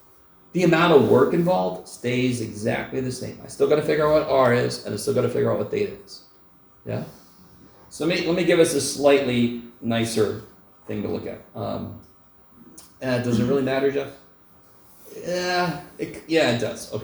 The amount of work involved stays exactly the same. I still got to figure out what r is, and I still got to figure out what theta is. Yeah? So let me give us a slightly nicer thing to look at. Does it really matter, Jeff? Yeah, it does.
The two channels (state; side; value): identical; both; correlation 1.00